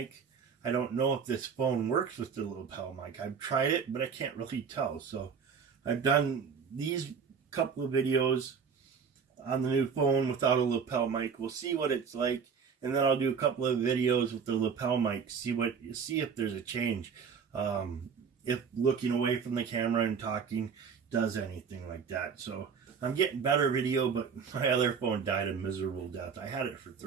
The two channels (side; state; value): left; quieter; 6.3 dB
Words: I don't know if this phone works with the lapel mic. I've tried it, but I can't really tell. So I've done these couple of videos on the new phone without a lapel mic. We'll see what it's like. And then I'll do a couple of videos with the lapel mic, see if there's a change. If looking away from the camera and talking does anything like that. So I'm getting better video, but my other phone died a miserable death. I had it for